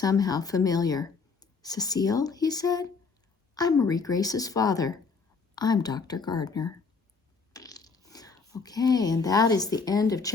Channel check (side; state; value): right; quieter; 4.8 dB